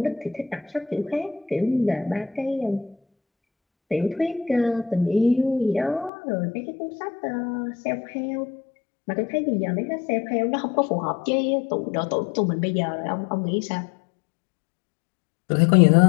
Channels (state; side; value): drops out; right; at 6.1 s